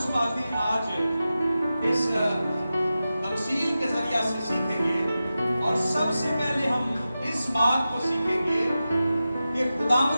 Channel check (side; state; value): both; inverted; correlation -0.93